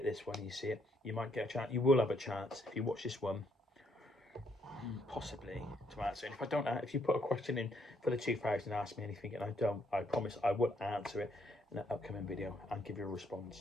this one and you see it, you might get a chance. You will have a chance if you watch this one, possibly, to answer. And if I don't, if you put a question in for the 2,000, ask me anything, and I don't, I promise I will answer it in an upcoming video and give you a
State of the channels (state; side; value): normal; both; correlation 0.72